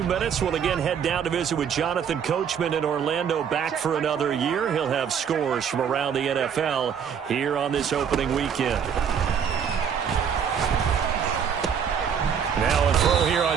minutes, we'll again head down to visit with Jonathan Coachman in Orlando, back for another year. He'll have scores from around the NFL here on this opening weekend. Now a throw here on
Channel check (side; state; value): left; quieter; 7.6 dB